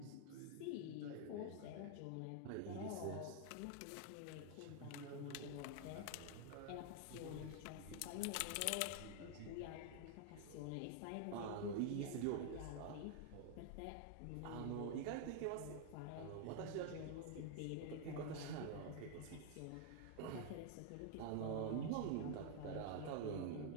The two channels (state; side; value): different; both; correlation 0.00